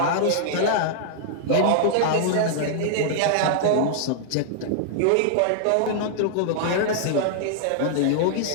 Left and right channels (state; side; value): different; both; correlation -0.01